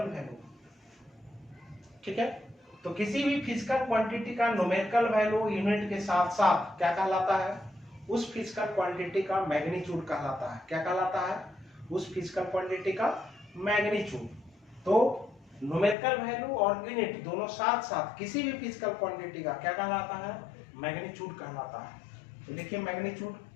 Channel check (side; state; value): right; drops out; at 16.0 s